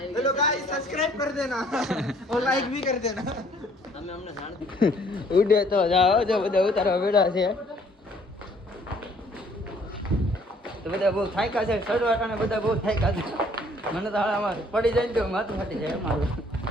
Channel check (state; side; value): normal; both; correlation 0.60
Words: हेलो गाइस सब्सक्राइब कर देना और लाइक भी कर देना. ઉડે તો જાઓ જો બધા ઉતારવા બેઠા છે. તો બધા બહુ થાક્યા છે ચડવા ને બધા બહુ થાક્યા છે. મને તો હાલામાં પડી જાય ને તો માથું ફાટી જાય મારું.